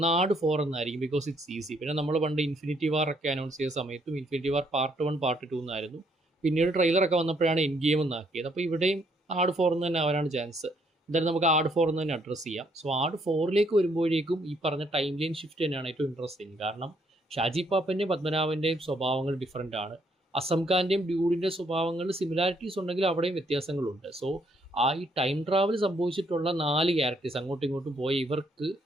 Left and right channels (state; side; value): normal; both; correlation 0.70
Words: ആട് 4 എന്നായിരിക്കും, ബിക്കോസ് ഇറ്റ്സ് ഈസി. പിന്നെ നമ്മൾ പണ്ട് ഇൻഫിനിറ്റി വാർ ഒക്കെ അനൗൺസ് ചെയ്ത സമയത്തും ഇൻഫിനിറ്റി വാർ പാർട്ട് 1 പാർട്ട് 2 എന്നായിരുന്നു. പിന്നീട് ട്രെയിലറൊക്കെ വന്നപ്പോഴാണ് എൻ ഗെയിം എന്നാക്കിയത്. അപ്പോൾ ഇവിടെയും ആട് 4 എന്ന് തന്നെ ആവാനാണ് ചാൻസ്. എന്തായാലും നമുക്ക് ആട് 4 എന്ന് തന്നെ അഡ്രസ്സ് ചെയ്യാം. സോ ആട് 4ലേക്ക് വരുമ്പോഴേക്കും ഈ പറഞ്ഞ ടൈം ലൈൻ ഷിഫ്റ്റ് തന്നെയാണ് ഏറ്റവും ഇൻട്രസ്റ്റിംഗ്. കാരണം ഷാജി പാപ്പൻ്റെയും പത്മനാഭൻ്റെയും സ്വഭാവങ്ങൾ ഡിഫറൻ്റ് ആണ്. അസം ഖാൻ്റെയും ഡ്യൂഡിൻ്റെ സ്വഭാവങ്ങളിൽ സിമിലാരിറ്റീസ് ഉണ്ടെങ്കിൽ അവിടെയും വ്യത്യാസങ്ങളുണ്ട്. സോ ഈ ടൈം ട്രാവൽ സംഭവിച്ചിട്ടുള്ള 4 ക്യാരക്ടേഴ്സ് അങ്ങോട്ടും ഇങ്ങോട്ടും പോയ ഇവർക്ക്